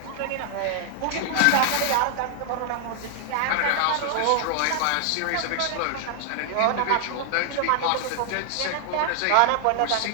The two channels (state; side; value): different; both; correlation 0.00